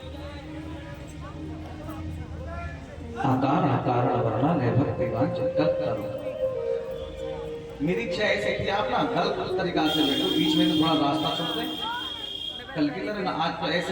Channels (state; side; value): identical; both; correlation 1.00